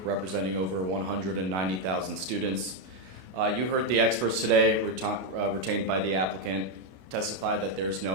representing over 190,000 students. You heard the experts today, retained by the applicant, testify that there's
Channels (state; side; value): late; left; 32 ms